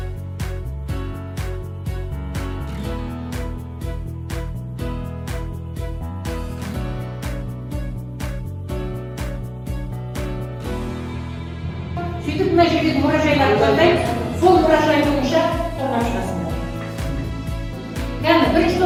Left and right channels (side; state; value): both; identical; correlation 1.00